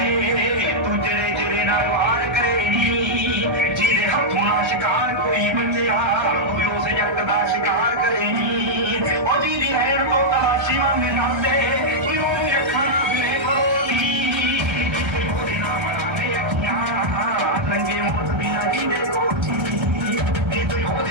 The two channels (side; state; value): left; late; 1.3 ms